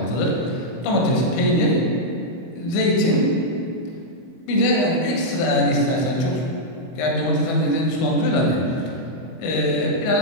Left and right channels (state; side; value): late; right; 24 ms